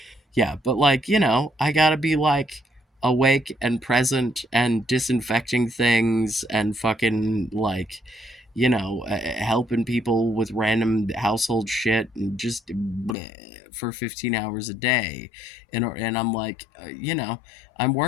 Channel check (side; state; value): right; drops out; at 13.2 s